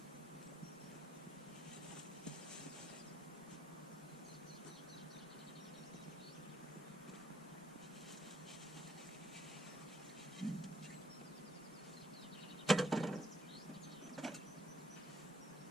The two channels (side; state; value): both; normal; correlation 0.71